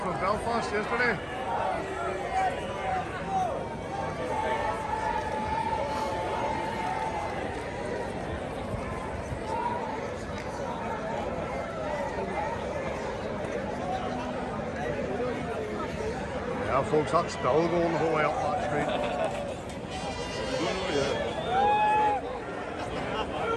Belfast yesterday. Yeah, folks, that's still going the whole way up that street.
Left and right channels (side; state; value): both; identical; correlation 1.00